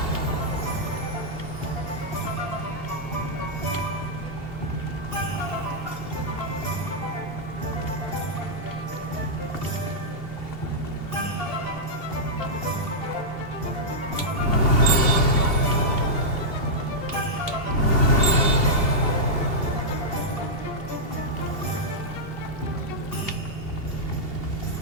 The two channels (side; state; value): right; late; 2.7 ms